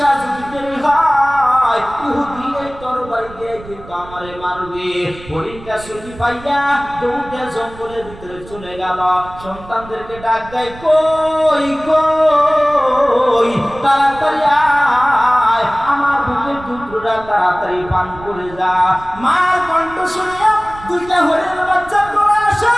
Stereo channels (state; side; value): noise; right; rumble, 18 dB below the sound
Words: যদি দেরি হয় ইহুদি এই তরবারি দিয়ে কিন্তু আমারে মারবে। হরিণটা ছুটি পাইয়া দৌড়ে জঙ্গলের ভিতরে চলে গেল। সন্তানদেরকে ডাক দেয়, কই কই তাড়াতাড়ি আয়, আমার বুকের দুধটা তাড়াতাড়ি পান করে যা। মার কণ্ঠ শুনিয়া দুইটা হরিণের বাচ্চা করে আসে।